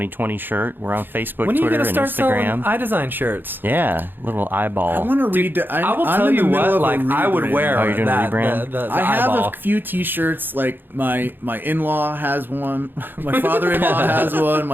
shirt. We're on Facebook, When are you Twitter, going to and start Instagram. selling iDesign shirts? Yeah, little eyeball. I want to read. I will tell you what, like, I would wear Oh, you're doing a that, rebrand? the I have eyeball. a few T-shirts. Like my in-law has one. My father-in-law has one.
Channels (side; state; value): left; late; 0.096 ms